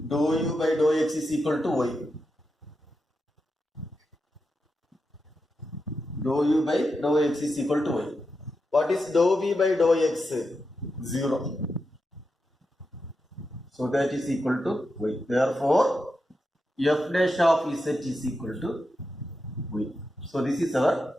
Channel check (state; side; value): normal; both; correlation 0.87